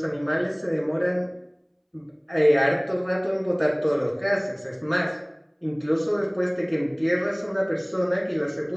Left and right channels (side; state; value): both; identical; correlation 1.00